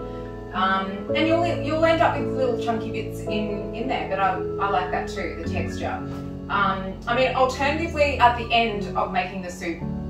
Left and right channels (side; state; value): both; identical; correlation 1.00